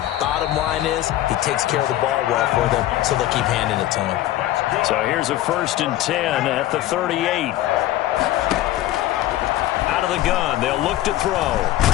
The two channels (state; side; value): quieter; right; 14.5 dB